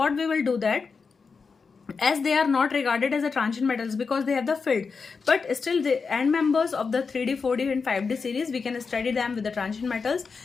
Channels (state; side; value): quieter; right; 5.0 dB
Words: we will do that, as they are not regarded as a transition metals because they have the field, but still the end members of the 3D, 4D and 5D series, we can study them with the transition metals.